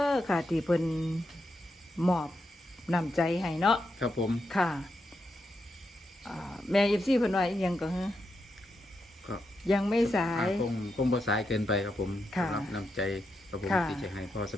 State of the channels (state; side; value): normal; both; correlation 0.84